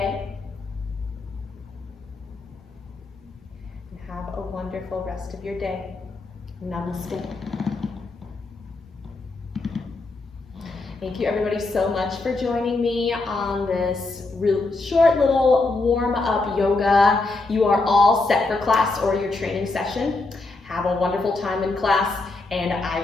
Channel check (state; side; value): quieter; right; 3.4 dB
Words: And have a wonderful rest of your day. Namaste. Thank you everybody so much for joining me on this short little warm-up yoga. You are all set for class or your training session. Have a wonderful time in class, and I